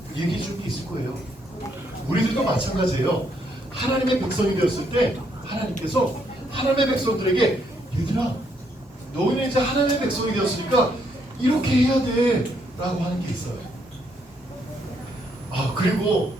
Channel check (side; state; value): both; normal; correlation 0.73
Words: 얘기해 줄 게 있을 거예요. 우리들도 마찬가지예요. 하나님의 백성이 되었을 때 하나님께서 하나님의 백성들에게 얘들아, 너희는 이제 하나님의 백성이 되었으니까 이렇게 해야 돼 라고 하는 게 있어요. 그리고